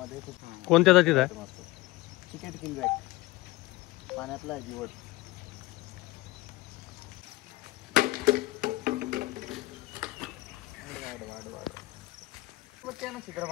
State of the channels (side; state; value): right; quieter; 19.9 dB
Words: खूप कोणत्या जातीत आहे? चिकेट किलबॅक पाण्यातला आहे दिवड. ना चित्र